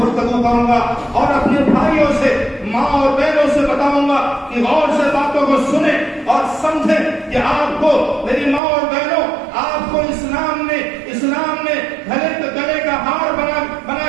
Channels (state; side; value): drops out; left; at 8.6 s